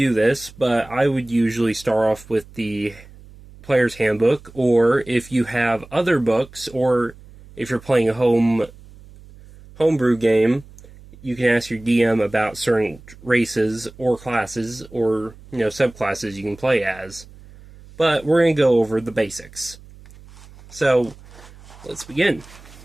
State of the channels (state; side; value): noise; right; hum, 21 dB below the sound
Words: this, but I would usually start off with the Player's Handbook, or if you have other books, or if you're playing a homebrew game, you can ask your DM about certain races or classes or subclasses you can play as. But we're going to go over the basics. So, let's begin.